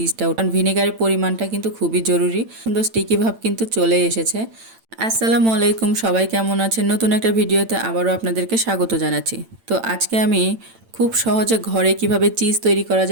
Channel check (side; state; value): left; late; 8.9 ms